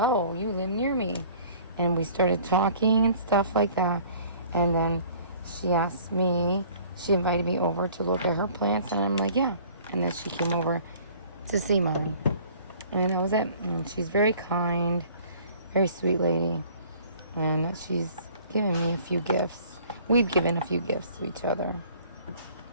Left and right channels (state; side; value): inverted; both; correlation -0.52